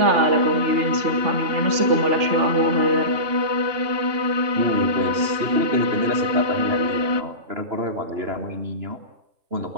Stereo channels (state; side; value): late; left; 3.4 ms